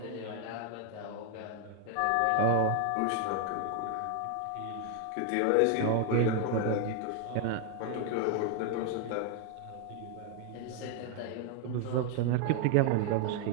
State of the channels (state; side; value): different; both; correlation 0.00